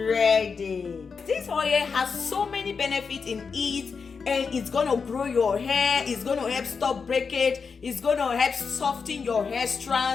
This oil has so many benefits in it, and it's gonna grow your hair, it's gonna help stop breakage, it's gonna help soften your hair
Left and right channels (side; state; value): right; quieter; 5.4 dB